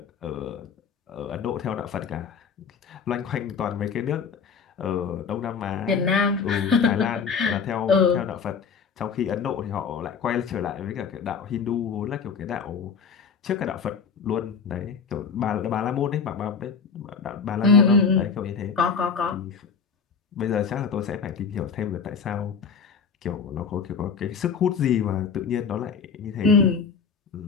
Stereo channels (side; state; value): right; quieter; 5.9 dB